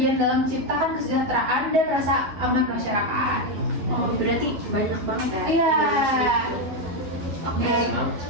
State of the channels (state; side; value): late; left; 11 ms